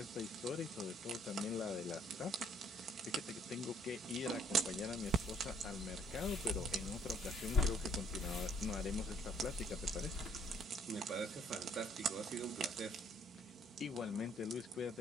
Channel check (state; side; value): normal; both; correlation 0.64